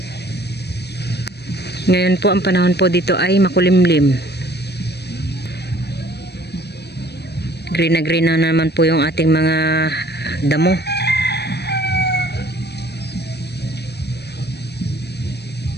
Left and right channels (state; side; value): late; right; 0.48 ms